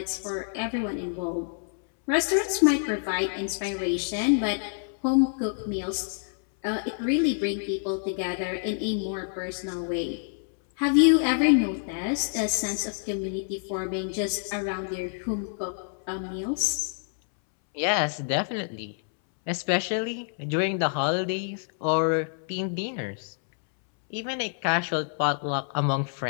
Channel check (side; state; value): right; silent; 60 dB below the other